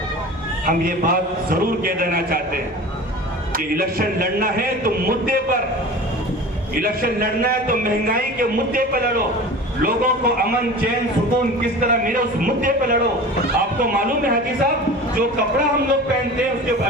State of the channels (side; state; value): both; normal; correlation 0.36